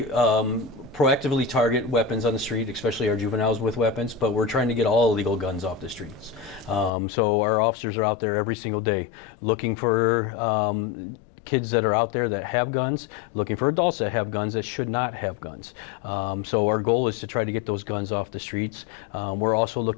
proactively target weapons on the street, especially our juveniles with weapons, but we're trying to get all illegal guns off the streets. So our officers are out there every single day looking for kids that are out there that have guns, looking for adults that have guns that should not have guns. So our goal is to try to get those guns off the streets. We're also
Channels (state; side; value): drops out; right; at 6.9 s